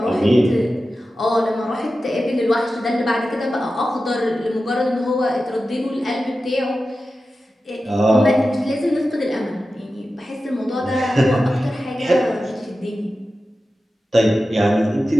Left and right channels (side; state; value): both; normal; correlation 0.93